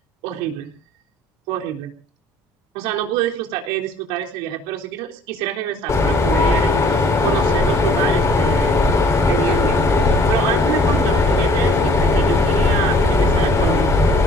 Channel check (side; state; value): both; normal; correlation 0.56